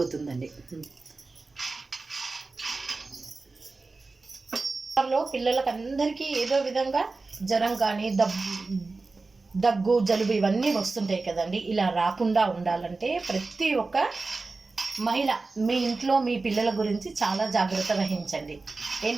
పిల్లలకు అందరికీ ఏదో విధంగా జ్వరం కానీ దగ్గు, జలుబు ఇవన్నీ వస్తుంటాయి కదండి. ఇలా రాకుండా ఉండాలంటే ప్రతి ఒక్క మహిళ మీ ఇంట్లో మీ పిల్లల గురించి చాలా జాగ్రత్త వహించండి.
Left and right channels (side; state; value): left; quieter; 3.7 dB